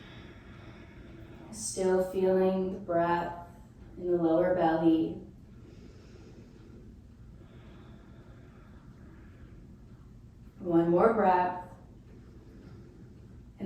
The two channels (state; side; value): identical; both; correlation 1.00